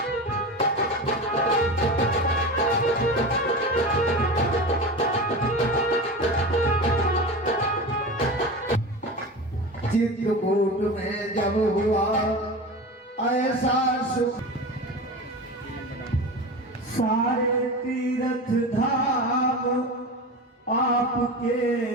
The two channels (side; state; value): both; normal; correlation 0.28